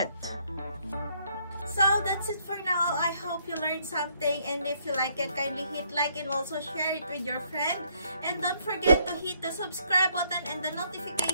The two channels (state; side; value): inverted; both; correlation -0.69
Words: So that's it for now. I hope you learned something, and if you like it, kindly hit like and also share it with your friend. And don't forget to hit the subscribe button and the